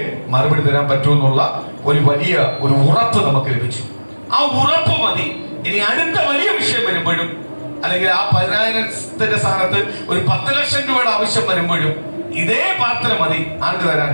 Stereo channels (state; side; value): inverted; both; correlation -1.00